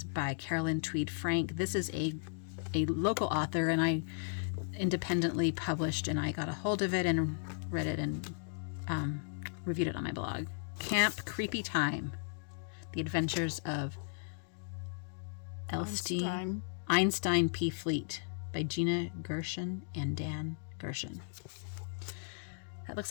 by Carolyn Tweed Frank. This is a local author, and I independently published, and I got a hold of it and read it and reviewed it on my blog. Camp Creepy Time, The Adventures of Einstein P. Fleet by Gina Gershon and Dan Gershon. That looks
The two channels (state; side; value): silent; right; digital silence